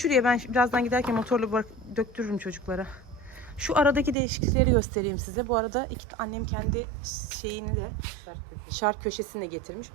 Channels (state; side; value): drops out; left; at 4.2 s